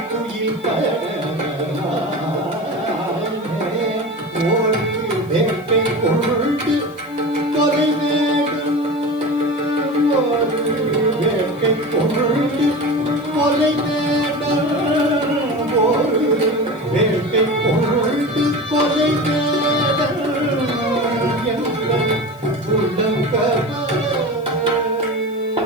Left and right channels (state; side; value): noise; left; hiss, 27 dB below the sound